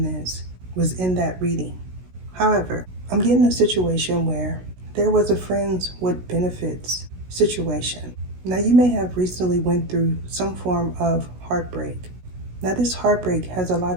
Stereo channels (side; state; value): left; late; 16 ms